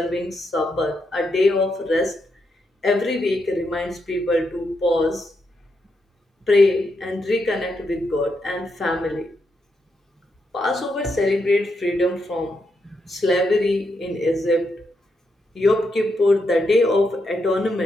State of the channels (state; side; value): normal; both; correlation 0.82